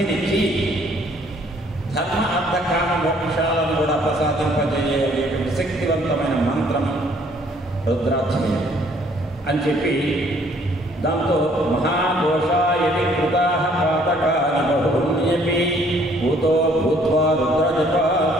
ధర్మ అర్థ కామ మోక్షాలను కూడా ప్రసాదింపజేయటువంటి శక్తివంతమైన మంత్రం రుద్రాధ్యయనం అని చెప్పి దాంతో మహాదోషాయది కృతా పాతకాని బహున్యపి భూతో భూత్వా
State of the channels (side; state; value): both; normal; correlation 0.61